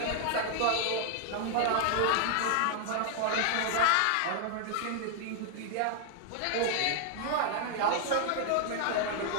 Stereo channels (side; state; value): both; different; correlation 0.00